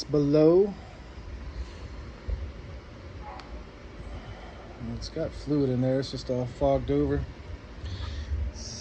below. It's got fluid in there, it's just all fogged over. It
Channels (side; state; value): both; identical; correlation 1.00